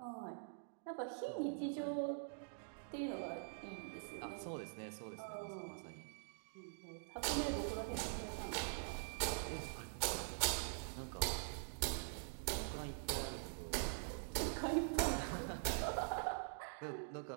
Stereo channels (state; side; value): silent; left; digital silence